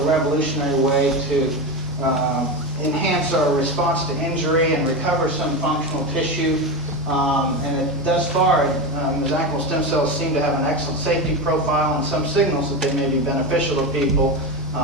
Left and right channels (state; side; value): normal; both; correlation 0.19